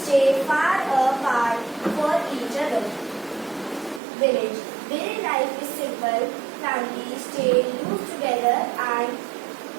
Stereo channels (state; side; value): drops out; left; at 4.0 s